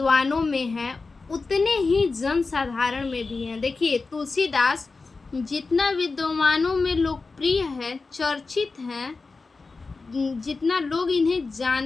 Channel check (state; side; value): quieter; right; 4.0 dB